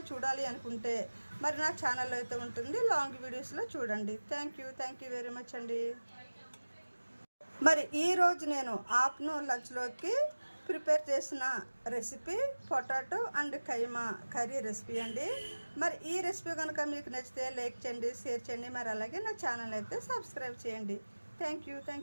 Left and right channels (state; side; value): inverted; both; correlation -1.00